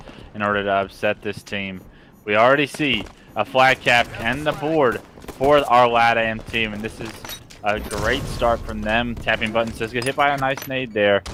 in order to upset this team. We already see a flag cap and the board for our LATAM team, and this is a great start from them. Tapping buttons does get hit by a nice nade there.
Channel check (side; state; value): both; identical; correlation 1.00